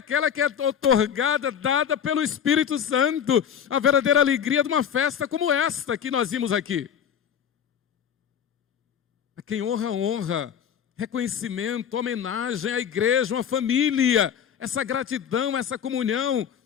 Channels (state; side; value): quieter; right; 8.4 dB